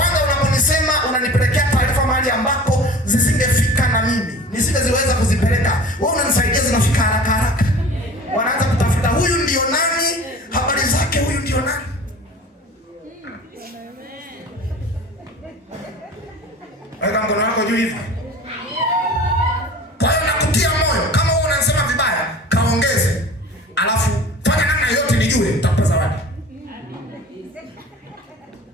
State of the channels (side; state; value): both; normal; correlation 0.41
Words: unaponisema unanipelekea taarifa mahali ambapo zisingefika na mimi nisingeziweza kuzipeleka. Wewe unanisaidia zinafika haraka. Wanaanza kutafuta huyu ndio nani, habari zake, huyu ndio nani. Weka mkono wako juu hivi. Kwa hiyo nakutia moyo, kama wewe unasema vibaya, kaongeze. Alafu fanya namna yote nijue, nitakupa zawadi.